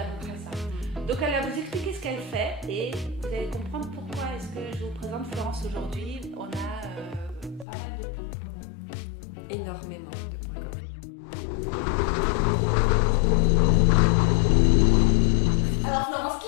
peu près ça. Donc elle va vous expliquer ce qu'elle fait et vous allez comprendre pourquoi est-ce que je vous présente Florence aujourd'hui. On a pas mal de points communs. Énormément de points communs. Alors Florence,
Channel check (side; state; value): right; drops out; at 7.7 s